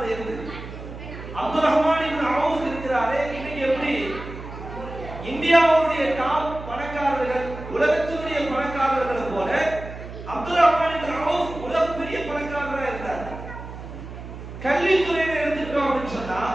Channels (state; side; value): noise; right; hum, 12 dB below the sound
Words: இருந்து அப்துல் ரஹ்மான் இப்னு அவுஃப் இருக்கிறாரே, இன்னைக்கு எப்படி இந்தியாவுடைய டாப் பணக்காரர்கள் உலகத்தினுடைய பணக்காரர்களை போல அப்துல் ரஹ்மான் இப்னு அவுஃப் உலகப்பெரிய பணக்காரராக இருந்தார். கல்வித்துறையில எடுத்துட்டோம் அப்படின்னு சொன்னா